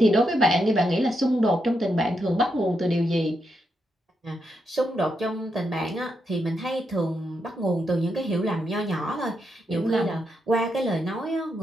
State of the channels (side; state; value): both; normal; correlation 0.82